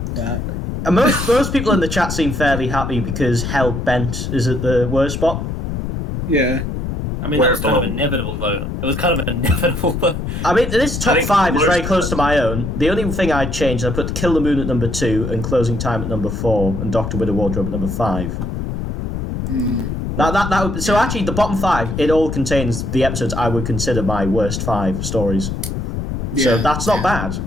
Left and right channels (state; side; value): noise; left; rumble, 4 dB below the sound